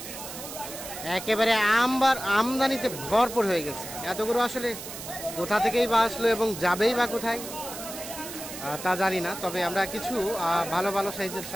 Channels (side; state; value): right; noise; hiss, 10 dB below the sound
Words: একেবারে আমদানিতে ভরপুর হয়ে গেছে। এতগুলো আসলে কোথা থেকেই বা আসলো এবং যাবেই বা কোথায় তা জানি না। তবে আমরা কিছু ভালো ভালো সাইজের